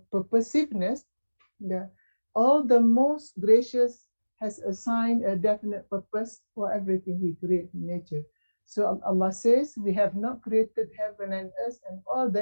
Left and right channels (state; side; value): inverted; both; correlation -1.00